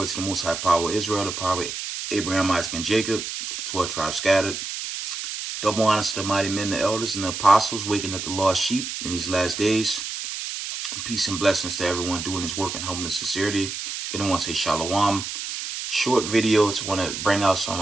to the Most High Power of Israel, the power of Abraham, Isaac, and Jacob, to the 12 tribes scattered. Double honors to the mighty men, the elders, and the apostles, waking up the lost sheep in these last days. Peace and blessings to everyone doing his work in humbleness and sincerity. Again, I want to say shalom. Short video to want to bring out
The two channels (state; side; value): noise; right; hiss, 6 dB below the sound